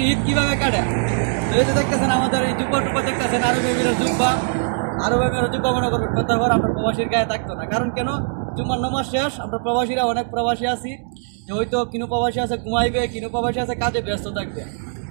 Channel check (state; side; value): silent; left; digital silence